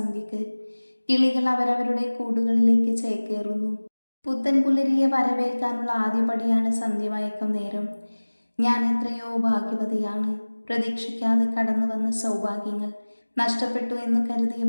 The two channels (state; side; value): inverted; both; correlation -1.00